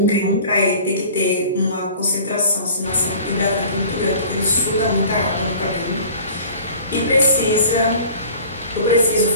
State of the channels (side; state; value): both; inverted; correlation -0.45